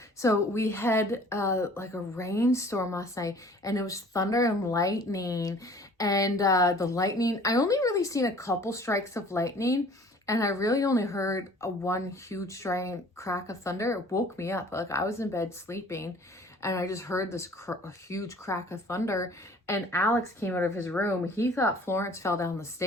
So we had like a rainstorm last night, and it was thunder and lightning. And the lightning, I only really seen a couple strikes of lightning, and I really only heard one huge giant crack of thunder. It woke me up. Like I was in bed sleeping, and I just heard this huge crack of thunder. And Alex came out of his room. He thought Florence fell down the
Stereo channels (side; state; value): both; normal; correlation 0.50